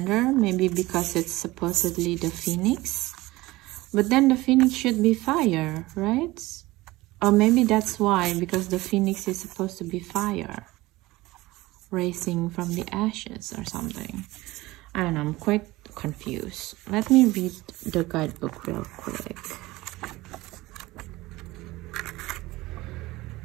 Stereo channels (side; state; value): left; quieter; 19.4 dB